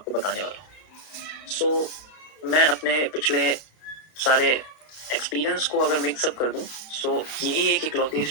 बताने वाला हूँ। मैं अपने पिछले सारे एक्सपीरियंस को अगर मिक्सअप कर दूं, यही एक इकलौती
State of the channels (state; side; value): late; right; 32 ms